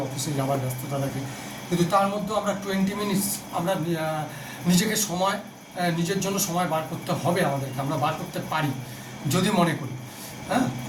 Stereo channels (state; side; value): identical; both; correlation 1.00